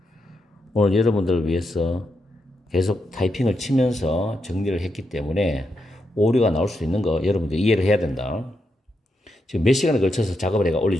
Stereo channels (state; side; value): normal; both; correlation 0.83